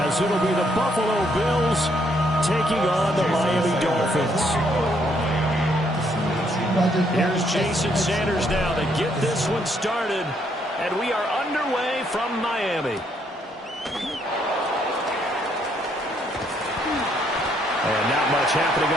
it'll be the Buffalo Bills taking on the Miami Dolphins. Here's Jason Sanders now to get this one started, and we are underway from Miami. And not much happening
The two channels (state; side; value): normal; both; correlation 0.71